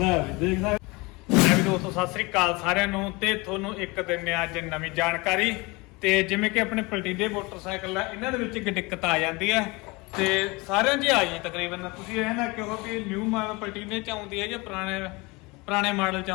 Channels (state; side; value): quieter; right; 25.1 dB